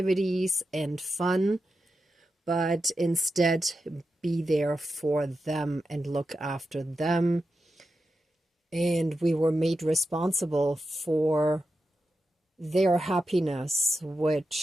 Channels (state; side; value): normal; both; correlation 0.89